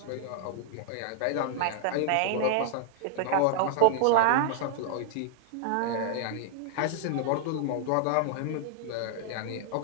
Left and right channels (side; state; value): both; different; correlation -0.01